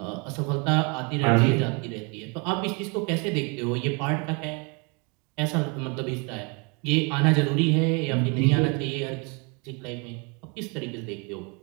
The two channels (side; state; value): left; quieter; 32.1 dB